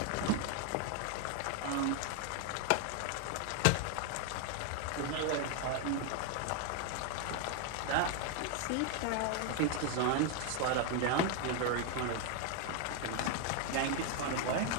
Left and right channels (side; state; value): both; different; correlation 0.01